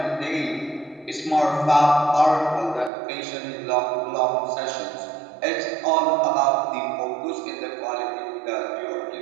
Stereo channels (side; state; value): left; drops out; at 2.9 s